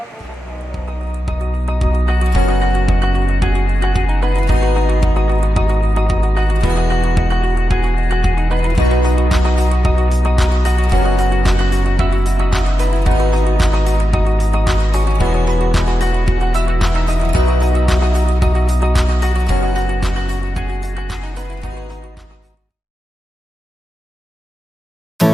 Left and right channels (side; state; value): both; normal; correlation 0.90